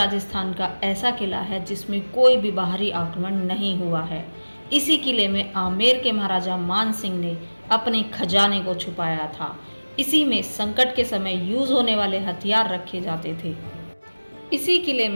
का ऐसा किला है जिसमें कोई भी बाहरी आक्रमण नहीं हुआ है। इसी किले में आमेर के महाराजा मान सिंह ने अपने खजाने को छुपाया था। इसी में संकट के समय यूज होने वाले हथियार रखे जाते थे। इसी किले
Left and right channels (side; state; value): both; inverted; correlation -1.00